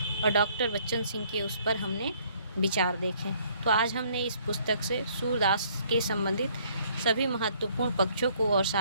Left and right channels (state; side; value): inverted; both; correlation -0.63